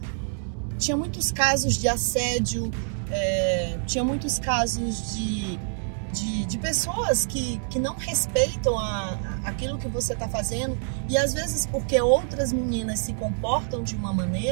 Tinha muitos casos de assédio, tinha muitos casos de pessoas que não respeitam aquilo que você está fazendo, e às vezes porque outras meninas se comportam de uma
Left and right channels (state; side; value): silent; left; 61 dB below the other